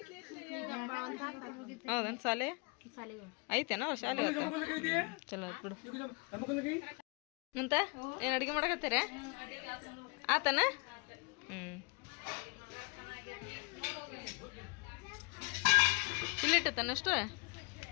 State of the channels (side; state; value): right; quieter; 31.9 dB